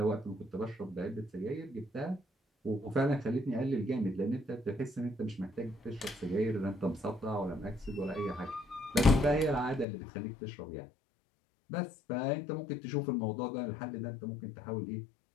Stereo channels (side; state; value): right; drops out; at 9.9 s